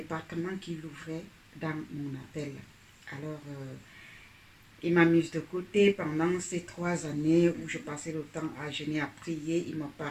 qui l'ouvrait dans mon appel. Alors, il m'a mise de côté pendant ces 3 années où je passais le temps à jeûner, à prier. Il me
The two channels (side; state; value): both; identical; correlation 1.00